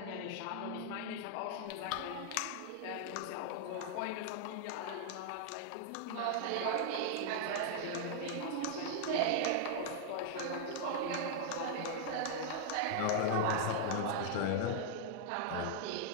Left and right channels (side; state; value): both; different; correlation 0.00